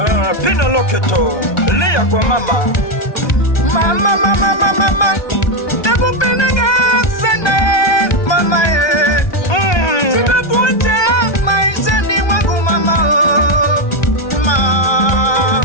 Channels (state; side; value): late; right; 1.2 ms